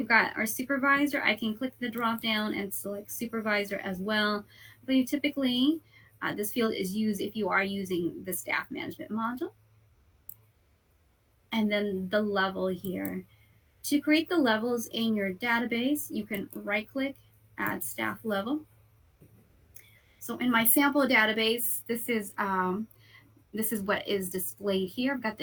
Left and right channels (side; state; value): both; identical; correlation 1.00